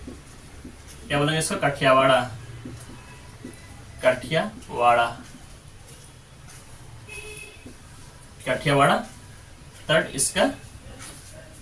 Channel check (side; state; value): both; identical; correlation 1.00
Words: क्या बोलेंगे इसको, काठियावाड़ा, काठियावाड़ा, काठियावाड़ा तट इसका